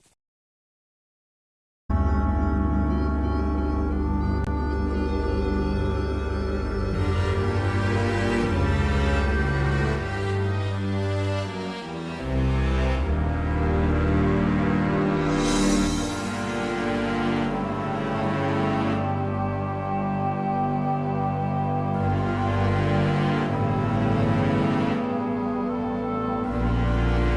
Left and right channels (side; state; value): both; identical; correlation 1.00